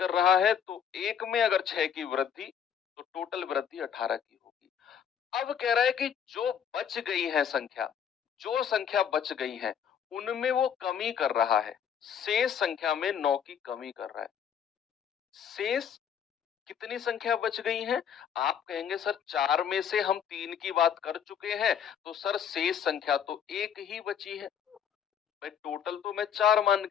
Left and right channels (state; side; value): quieter; right; 8.3 dB